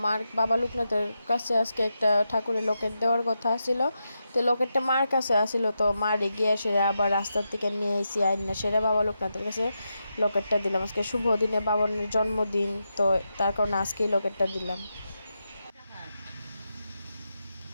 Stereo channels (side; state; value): both; inverted; correlation -0.87